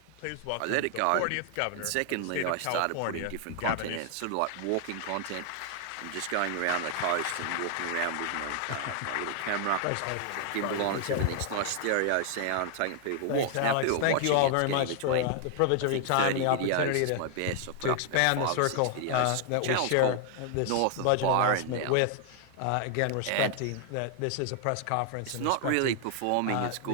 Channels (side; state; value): both; different; correlation 0.00